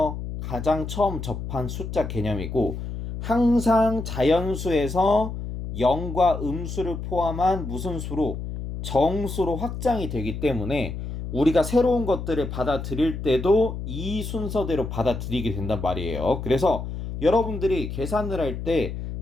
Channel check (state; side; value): noise; left; hum, 6 dB below the sound